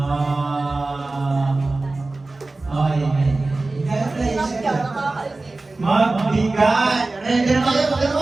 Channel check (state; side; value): quieter; left; 3.2 dB